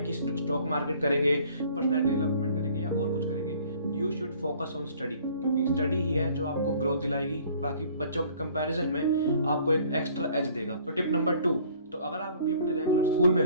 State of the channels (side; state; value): both; inverted; correlation -0.55